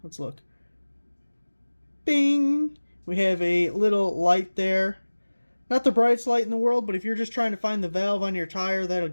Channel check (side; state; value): both; inverted; correlation -1.00